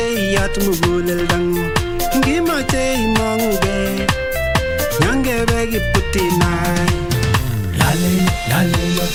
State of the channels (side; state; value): both; identical; correlation 1.00